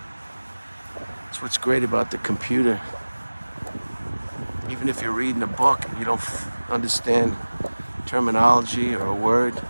That's what's great about the computer. Even if you're reading a book and you don't understand terminology or a word,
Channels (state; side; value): inverted; both; correlation -1.00